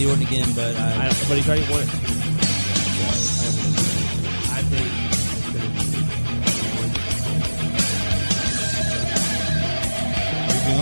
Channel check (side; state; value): both; inverted; correlation -1.00